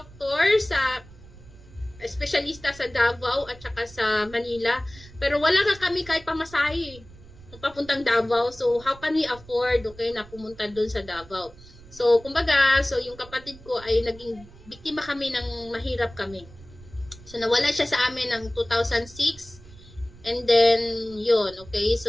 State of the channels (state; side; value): noise; right; rumble, 20 dB below the sound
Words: sa espesyalista sa Davao at saka sa Manila. Pero wala kami kahit pamasahe papuntang Davao. So, how can we afford, okay, na pumunta doon sa Davao? So, kumbaga, so yung kapatid ko ay naging biktima kami ng mahirap kami. So, nawala siya sa amin ng 2006. And then, yun, okay?